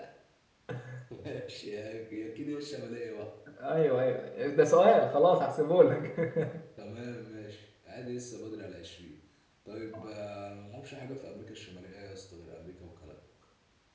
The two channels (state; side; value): identical; both; correlation 1.00